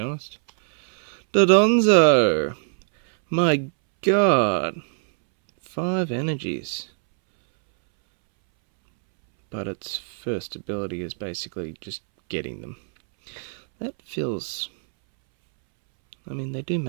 Dodonzo! My god! 5 energies. But its first ability is basically just getting them. That feels... I mean, they do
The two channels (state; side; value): silent; left; 63 dB below the other